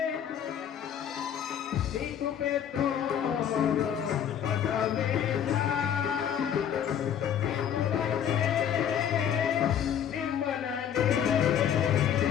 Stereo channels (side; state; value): right; quieter; 9.1 dB